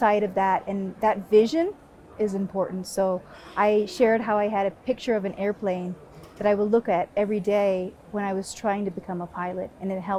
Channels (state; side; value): identical; both; correlation 1.00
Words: of that. And that vision is important. So I shared how I had a picture of an airplane that I would look at every day when I was trying to become a pilot, and it